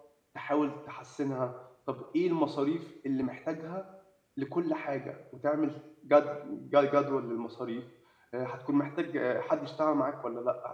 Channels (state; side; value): identical; both; correlation 1.00